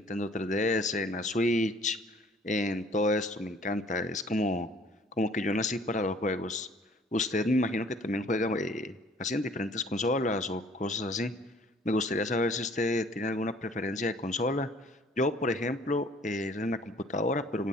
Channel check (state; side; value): normal; both; correlation 0.55